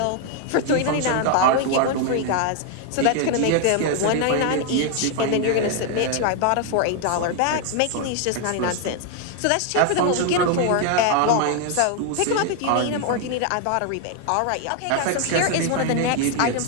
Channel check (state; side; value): different; both; correlation 0.00